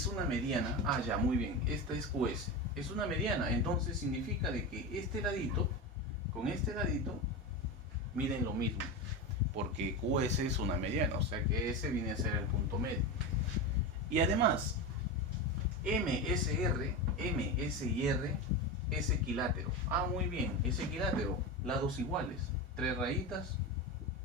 una mediana, ya, muy bien, esta es QS, es una mediana, entonces significa de que este ladito con este ladito miden lo mismo, porque QS es una mediana, o sea que ese viene a ser el punto medio. Y además, MSR es equilátero. Muy bien, es equilátero, lados iguales, 3 rayitas,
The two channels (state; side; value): normal; both; correlation 0.20